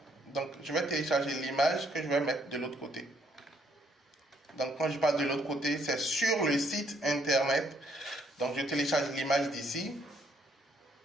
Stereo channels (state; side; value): normal; both; correlation 0.69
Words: Donc, je vais télécharger l'image que je vais mettre de l'autre côté. Donc, quand je parle de l'autre côté, c'est sur le site internet. Donc, je télécharge l'image d'ici,